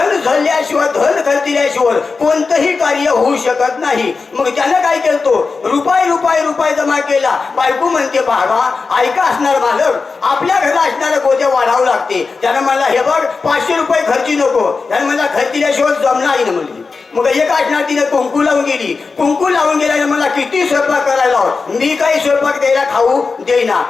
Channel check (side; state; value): right; quieter; 4.5 dB